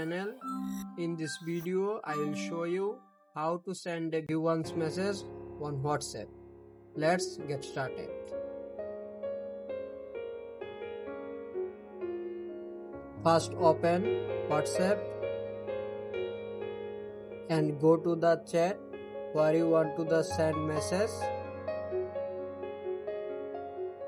In this video, I will show you how to send a once message on WhatsApp. Let's get started. First open WhatsApp and go to the chat where you want to send message.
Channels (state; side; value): identical; both; correlation 1.00